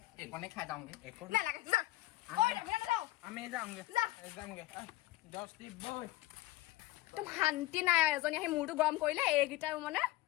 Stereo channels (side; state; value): right; quieter; 17.8 dB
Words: এইকণে খাই যাওঁগে নালাগে যা কৈ যাবি নে নাযাও আমি যামগে যা 10 বই একদম শান্তি নাই এজনী আহি মূৰটো গৰম কৰিলে এইকেইটা মানে